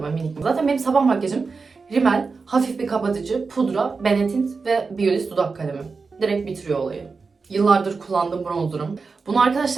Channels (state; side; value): quieter; left; 4.6 dB